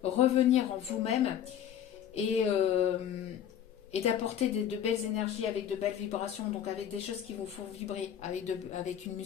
revenir en vous-même et d'apporter de belles énergies avec de belles vibrations, donc avec des choses qui vous font vibrer, avec une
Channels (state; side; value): quieter; right; 9.7 dB